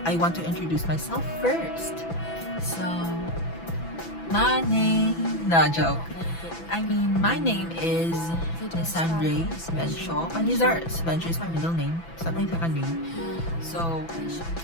I want to introduce myself first. So, my name, no joke. My name is Nisandre Svenshaw. Panizar Svenshaw is my middle name. It's not my second name. So,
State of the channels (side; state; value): right; late; 6.0 ms